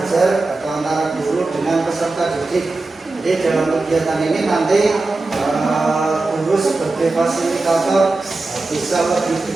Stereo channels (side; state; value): left; quieter; 3.3 dB